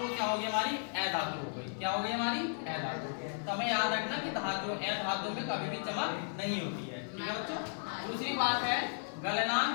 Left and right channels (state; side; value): silent; right; 54 dB below the other